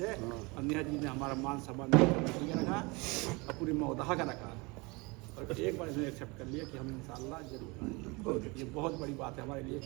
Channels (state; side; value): quieter; left; 26.6 dB